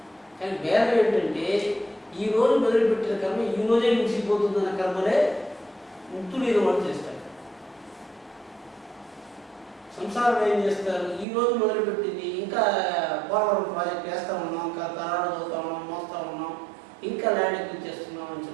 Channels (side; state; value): left; drops out; at 11.2 s